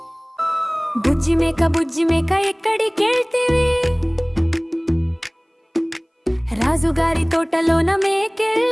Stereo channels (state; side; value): identical; both; correlation 1.00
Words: బుజ్జి మేక ఎక్కడికెళ్తివి? రాజుగారి తోటలోన